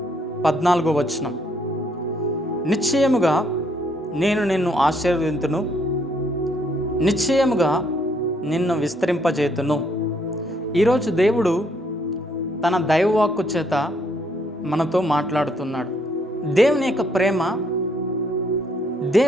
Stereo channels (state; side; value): normal; both; correlation 0.69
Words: 14వ వచనం. నిశ్చయముగా నేను నిన్ను ఆశీర్వదింతును, నిశ్చయముగా నిన్ను విస్తరింపజేతును. ఈరోజు దేవుడు తన దైవవాక్కు చేత మనతో మాట్లాడుతున్నాడు. దేవుని యొక్క ప్రేమ,